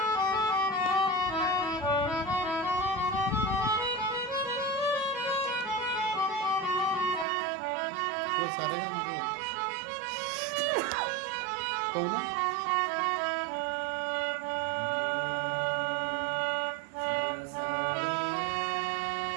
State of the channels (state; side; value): drops out; left; at 7.2 s